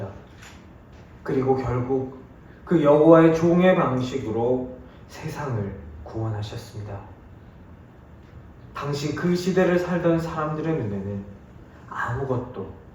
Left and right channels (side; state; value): both; identical; correlation 1.00